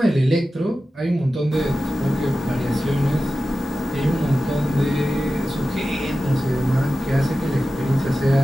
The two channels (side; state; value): both; normal; correlation 0.94